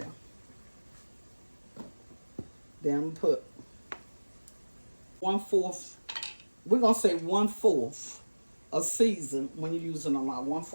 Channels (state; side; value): inverted; both; correlation -1.00